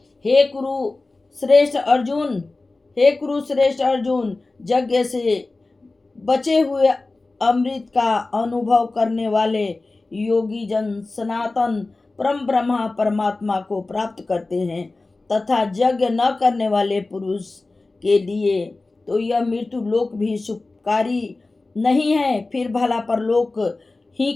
हे कुरु श्रेष्ठ अर्जुन, यज्ञ से बचे हुए अमृत का अनुभव करने वाले योगी जन सनातन परम ब्रह्मा परमात्मा को प्राप्त करते हैं तथा यज्ञ न करने वाले पुरुष के लिए तो यह मृत्यु लोक भी सुखकारी नहीं है। फिर भला परलोक ही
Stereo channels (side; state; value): right; quieter; 3.3 dB